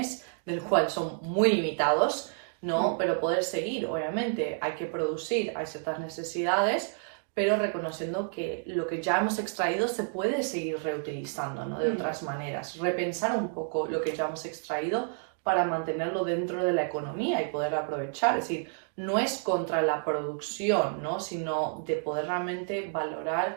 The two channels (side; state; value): left; silent; 58 dB below the other